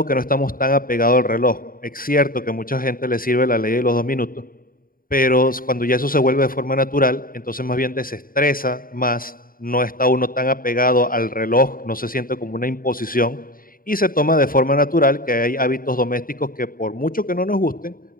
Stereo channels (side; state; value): right; late; 0.41 ms